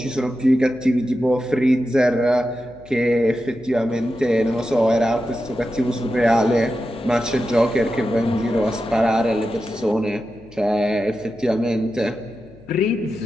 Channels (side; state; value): left; noise; hum, 23 dB below the sound